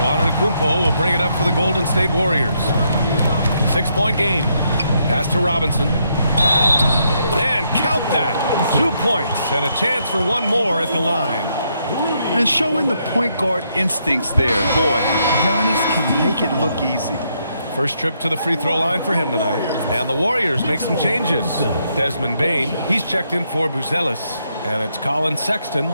Antetokounmpo will bring it up for the Golden State Warriors. 6-point game. Pass to Robinson. And count that. 2 points and a chance for one more at the line. And showing the point guard instincts there. Boy, Giannis can make it look easy. First trip to the free throw line for him tonight. And the Warriors make some changes. Desmond Bane, he's checked in for Buzelis. And it's Colin Sexton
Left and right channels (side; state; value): both; inverted; correlation -0.76